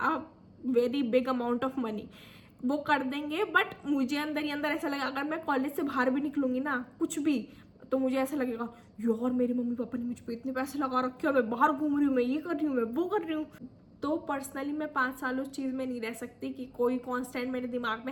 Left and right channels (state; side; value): identical; both; correlation 1.00